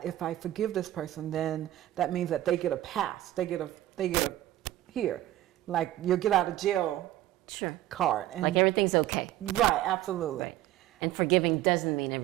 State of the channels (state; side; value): quieter; left; 14.3 dB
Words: if I forgive this person, then that means that they get a pass. They get a here, like you'll get out of jail card. And like everything's okay. Right, absolutely. Right. And forgiving doesn't mean